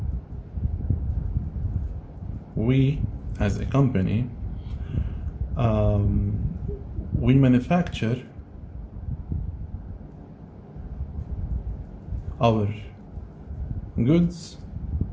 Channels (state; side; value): identical; both; correlation 1.00